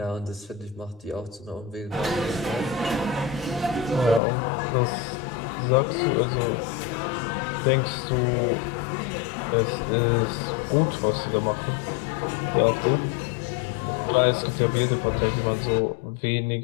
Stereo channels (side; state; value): right; drops out; at 4.2 s